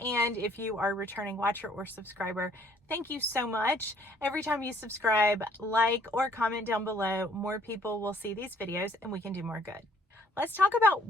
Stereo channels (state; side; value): normal; both; correlation 0.61